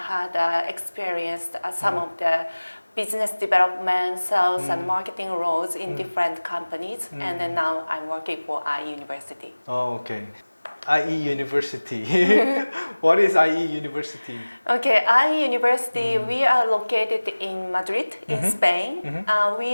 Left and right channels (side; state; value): both; inverted; correlation -1.00